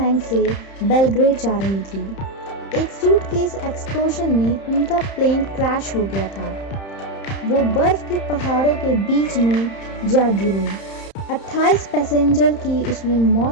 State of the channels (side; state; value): right; late; 31 ms